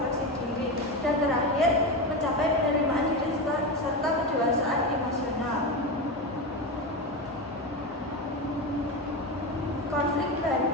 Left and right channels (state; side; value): normal; both; correlation 0.18